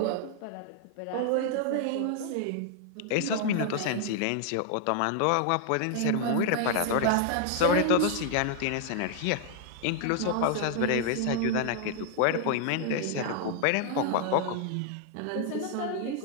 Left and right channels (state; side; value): different; both; correlation 0.00